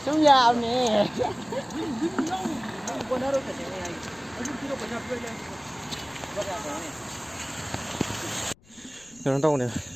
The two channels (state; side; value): noise; left; rumble, 27 dB below the sound